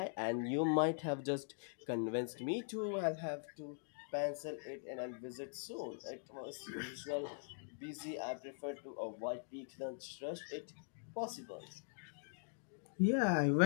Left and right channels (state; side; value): silent; right; digital silence